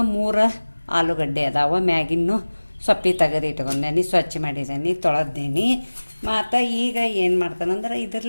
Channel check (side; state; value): both; inverted; correlation -1.00